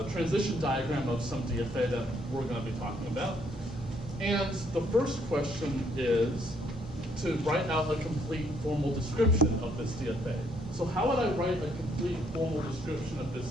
transition diagram of some DFA that we're going to be talking about. And the first question is to write out a complete formal description of this DFA. So how would I write a complete formal description of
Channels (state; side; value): noise; right; hum, 15 dB below the sound